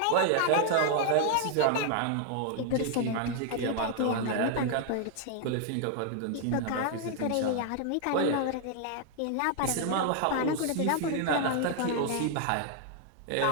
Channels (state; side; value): different; both; correlation 0.00